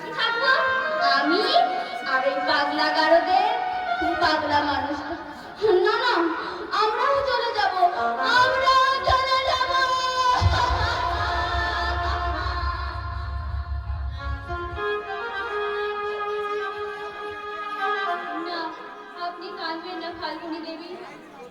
থাকবো আমি আর ওই পাগলা গারদের পাগলা মানুষ। না না, আমরাও চলে যাব, আমরাও চলে যাব। না, আপনি কাঁদবেন না ফাল্গুনী দেবী।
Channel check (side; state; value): both; identical; correlation 1.00